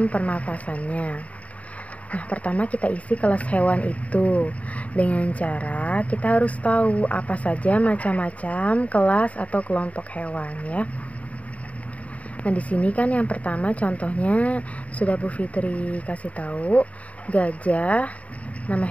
pernafasannya. Nah, pertama kita isi kelas hewan itu dengan cara kita harus tahu apa saja macam-macam kelas atau kelompok hewan ya. Nah, di sini kan yang pertama contohnya sudah Bu Fitri kasih tahu, gajah. Nama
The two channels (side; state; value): right; late; 0.067 ms